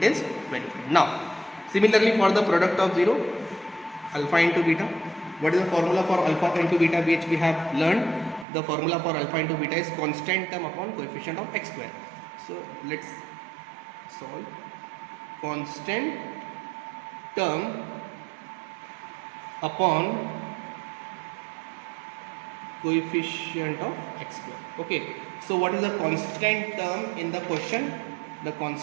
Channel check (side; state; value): left; drops out; at 8.5 s